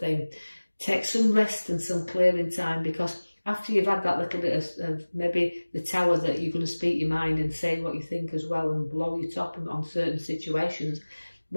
Take some rest and some clearing time, because after you've had that little bit of maybe the tower that you're going to speak your mind and say what you think as well and blow your top on certain situations,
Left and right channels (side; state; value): both; inverted; correlation -1.00